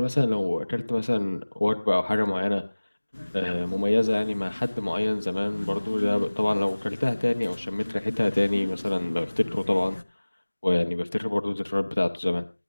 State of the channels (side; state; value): both; inverted; correlation -1.00